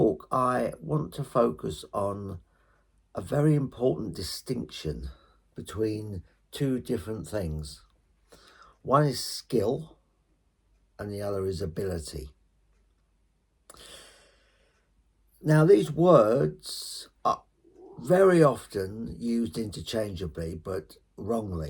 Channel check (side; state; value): both; identical; correlation 1.00